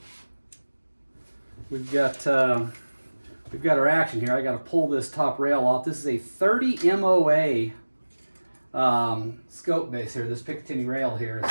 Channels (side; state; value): both; inverted; correlation -1.00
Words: We've got our action here. I got to pull this top rail off. This is a 30 MOA scope base here. This Picatinny rail here is